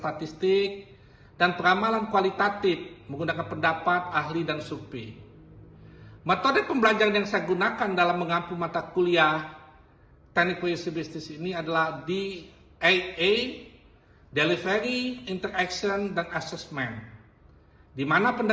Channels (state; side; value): identical; both; correlation 1.00